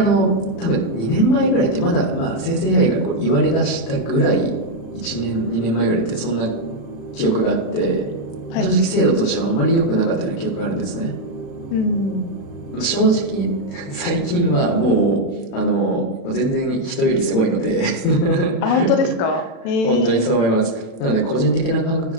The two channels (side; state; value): right; late; 35 ms